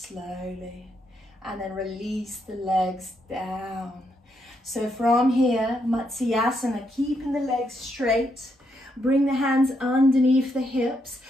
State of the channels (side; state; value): both; normal; correlation 0.78